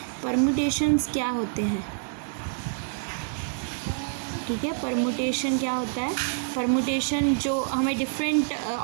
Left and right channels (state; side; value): silent; left; digital silence